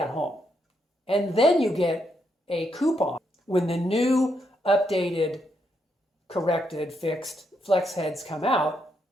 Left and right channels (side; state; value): both; normal; correlation 0.79